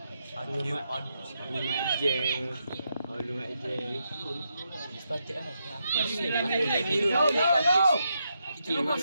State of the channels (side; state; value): both; inverted; correlation -0.82